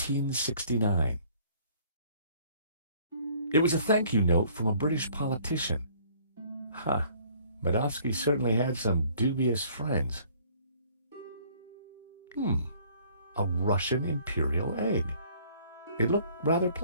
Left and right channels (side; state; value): both; inverted; correlation -0.57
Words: It was a thank you note from a British politician. Huh. Medovsky certainly had some dubious friends. A Russian imperial egg. It looked rather